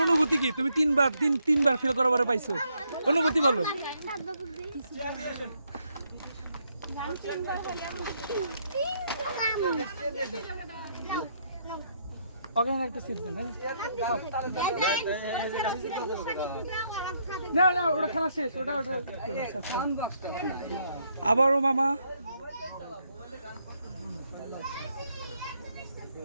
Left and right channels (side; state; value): both; inverted; correlation -0.74